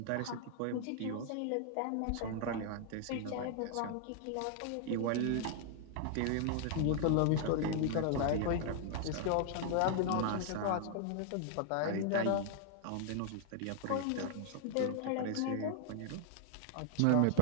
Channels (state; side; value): different; both; correlation 0.00